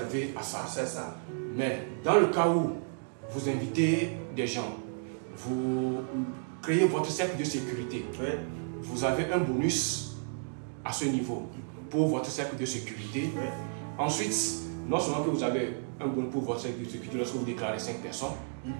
à ça. C'est ça. Mais dans le cas où vous invitez des gens, vous créez votre cercle de sécurité, vous avez un bonus à ce niveau pour votre cercle de sécurité. Ensuite, non seulement que vous avez un bonus pour votre cercle de sécurité lorsque vous déclarez 5 personnes,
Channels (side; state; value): left; silent; digital silence